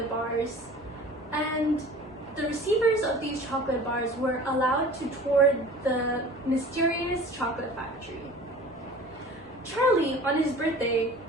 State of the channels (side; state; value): both; normal; correlation 0.42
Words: bars, and the receivers of these chocolate bars were allowed to tour the mysterious chocolate factory. Charlie, on his birthday,